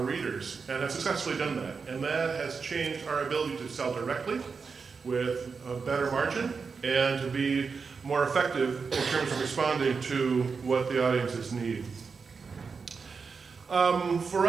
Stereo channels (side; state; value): left; quieter; 5.2 dB